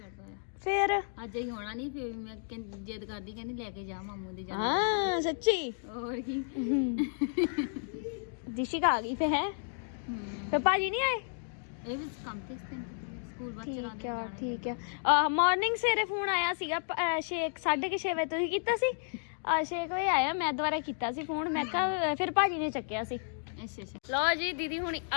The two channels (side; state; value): right; silent; digital silence